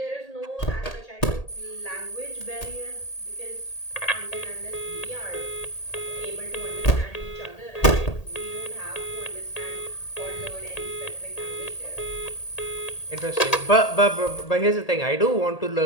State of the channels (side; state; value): right; late; 1.8 ms